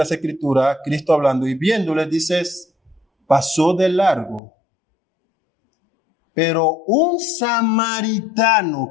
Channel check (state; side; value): drops out; right; at 4.4 s